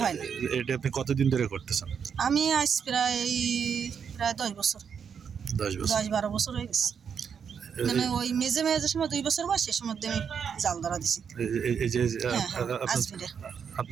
হয় না। এটা আপনি কতদিন ধরে করতেছেন? আমি আজ প্রায় 10 বছর, 10-12 বছর হয়ে গেছে। মানে ওই মেজে সময় 2 বছর বয়স, সে সময় আমি জাল ধরা দিছি। এই যে আজমিরে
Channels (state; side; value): quieter; left; 7.1 dB